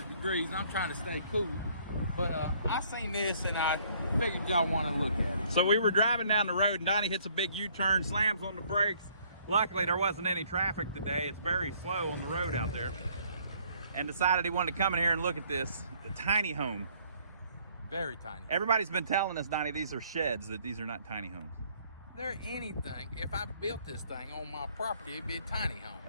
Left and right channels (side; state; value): both; inverted; correlation -0.62